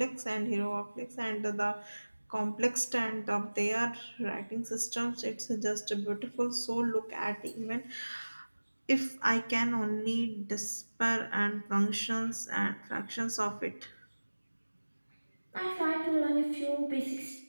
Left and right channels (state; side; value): inverted; both; correlation -1.00